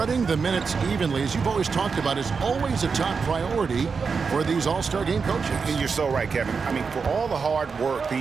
the minutes evenly, as you've always talked about, is always a top priority for these All-Star game coaches. And you're so right, Kevin. I mean, for all the hard work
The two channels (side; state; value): left; quieter; 5.3 dB